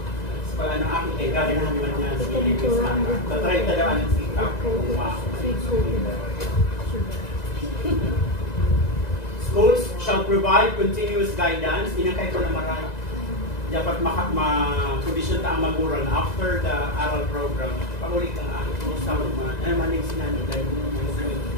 Pag ano akin, galing naman niya sa Pilipinas na. Tatry tadaan ng sikap. Schools shall provide continuous guidance. Inakay ko na marami. Dapat ma-condition ta ang magulang after the aral program. Pag-ulit ang akin, kumusta mo naman. Ano man yung sinanod dahil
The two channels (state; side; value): late; right; 2.0 ms